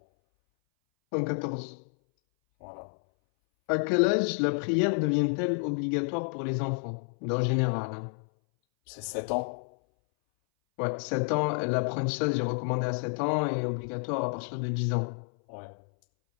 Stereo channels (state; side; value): silent; right; 58 dB below the other